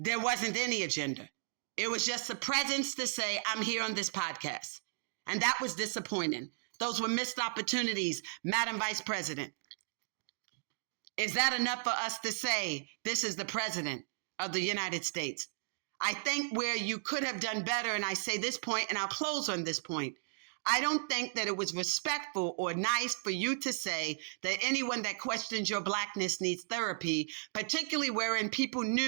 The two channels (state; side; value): silent; left; digital silence